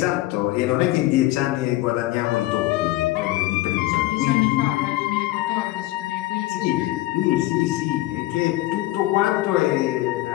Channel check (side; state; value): right; quieter; 17.6 dB